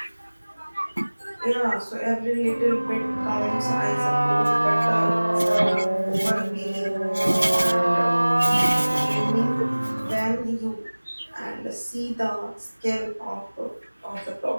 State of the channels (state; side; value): inverted; both; correlation -1.00